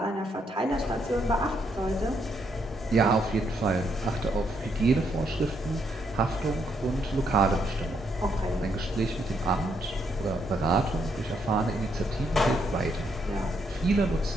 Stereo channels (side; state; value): both; normal; correlation 0.75